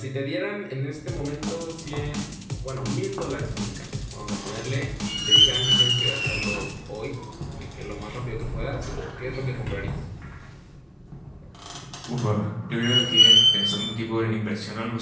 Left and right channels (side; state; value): both; identical; correlation 1.00